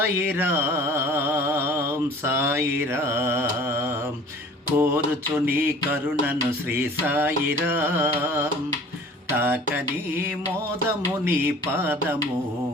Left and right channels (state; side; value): normal; both; correlation 0.47